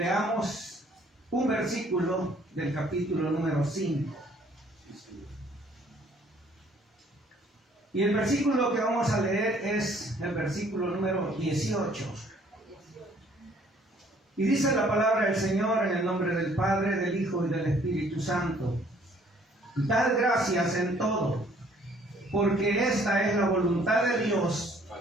un versículo del capítulo número 5. Y el versículo que vamos a leer es el versículo número 18. Y dice la palabra del Señor en el nombre del Padre, del Hijo y del Espíritu Santo. Dad gracias en todo, porque esta es la voluntad de Dios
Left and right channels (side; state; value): both; normal; correlation 0.60